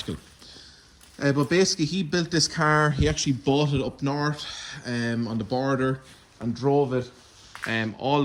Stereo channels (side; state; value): both; identical; correlation 1.00